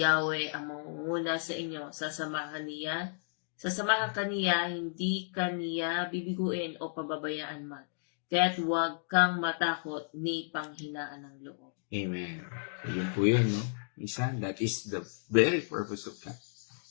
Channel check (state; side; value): silent; right; digital silence